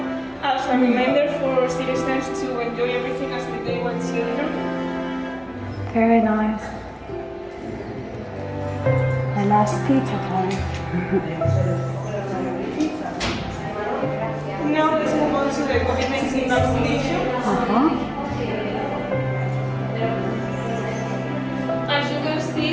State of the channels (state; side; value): identical; both; correlation 1.00